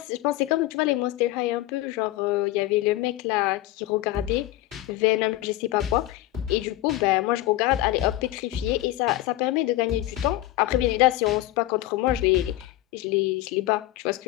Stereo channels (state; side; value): quieter; right; 16.1 dB